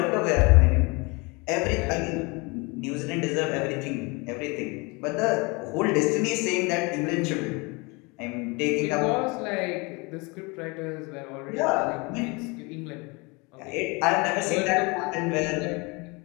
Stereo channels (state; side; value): quieter; right; 27.8 dB